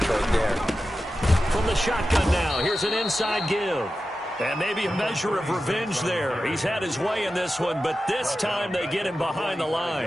right there. From the shotgun now, here's an inside give. And maybe a measure of revenge there. He's had his way in this one, but this time they get him behind the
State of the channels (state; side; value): normal; both; correlation 0.92